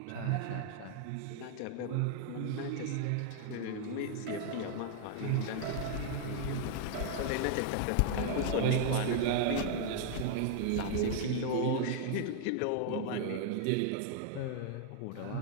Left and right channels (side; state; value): both; different; correlation 0.00